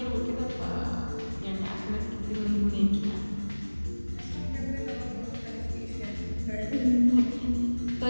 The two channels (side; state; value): both; inverted; correlation -1.00